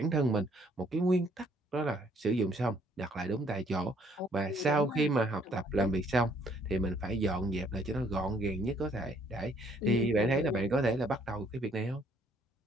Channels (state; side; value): normal; both; correlation 0.64